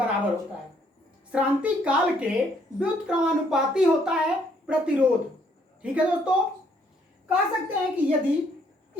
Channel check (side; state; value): both; normal; correlation 0.67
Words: होता है। श्रांति काल के व्युत्क्रमानुपाती होता है प्रतिरोध, ठीक है दोस्तों। कह सकते हैं कि यदि